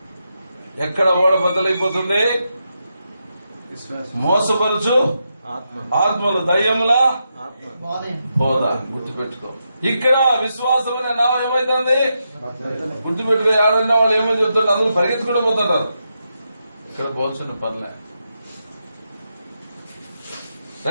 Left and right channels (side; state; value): both; inverted; correlation -0.85